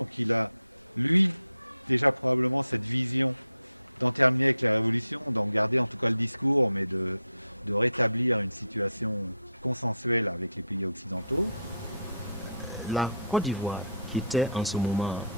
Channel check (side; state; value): both; inverted; correlation -0.72